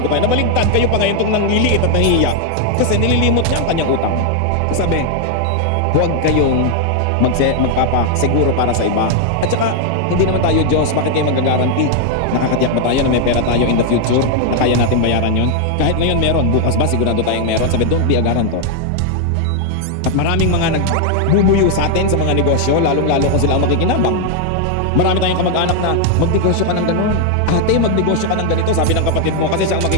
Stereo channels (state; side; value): different; both; correlation 0.00